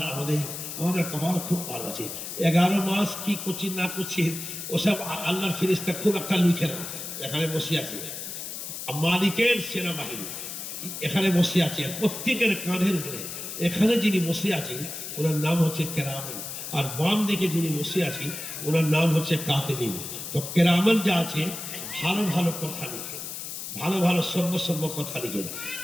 আমাদের কপাল খুব ভালো আছে। 11 মাস কি করছি না করছি ওসব আল্লাহর ফেরেশতা খুব একটা লিখে না। এখানে বসে আছে মালিকের সেনাবাহিনী, এখানে বসে আছে, প্রত্যেকের কাঁধের উপরে এখানে যিনি বসে আছেন ওনার নাম হচ্ছে কেরামান, আর বাম দিকে যিনি বসে আছেন ওনার নাম হচ্ছে কাতিবিন। তো কেরামান যা আছে ভালো ভালো কথা লিখেন, ভালো সর্ব কথা লিখেন,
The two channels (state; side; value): noise; left; hiss, 7 dB below the sound